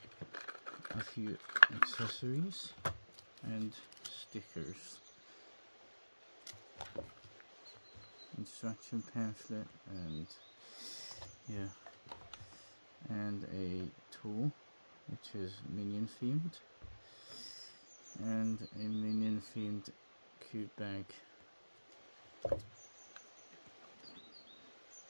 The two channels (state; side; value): inverted; both; correlation -1.00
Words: a few accessories and stickers, instruction pamphlet, and a tool which is minion themed, and a minion themed cube bag.